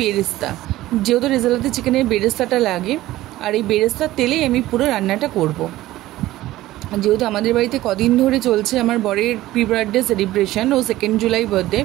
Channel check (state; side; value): quieter; left; 16.0 dB